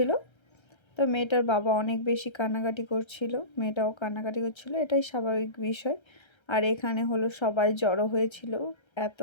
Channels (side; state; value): right; late; 1.3 ms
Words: তো মেয়েটার বাবা অনেক বেশি কান্নাকাটি করছিল, মেয়েটাও কান্নাকাটি করছিল, এটাই স্বাভাবিক বিষয়। আর এখানে হলো সবাই জড়ো হয়েছিল, এত